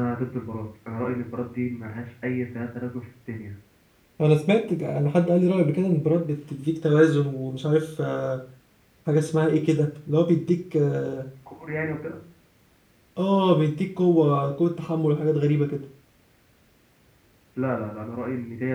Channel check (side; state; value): both; identical; correlation 1.00